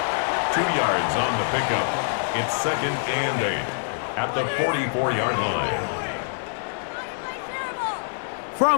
2 yards on the pickup. It's 2nd and 8 at the 44-yard line.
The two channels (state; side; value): silent; right; digital silence